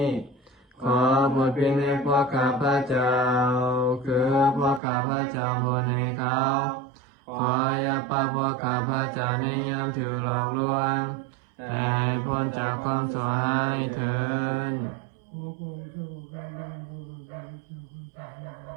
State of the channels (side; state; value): left; drops out; at 4.8 s